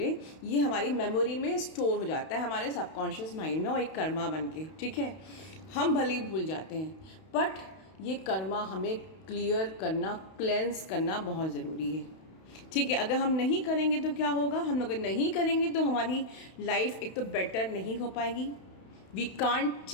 ये हमारी मेमोरी में स्टोर हो जाता है हमारे सबकॉन्शियस माइंड में, और एक कर्मा बन के, ठीक है। हम भले ही भूल जाते हैं, बट ये कर्मा हमें क्लियर करना, क्लेंस करना बहुत ज़रूरी है, ठीक है। अगर हम नहीं करेंगे तो क्या होगा? हम अगर नहीं करेंगे तो हमारी लाइफ एक तो बेटर नहीं हो पाएगी, we can't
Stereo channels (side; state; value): right; late; 32 ms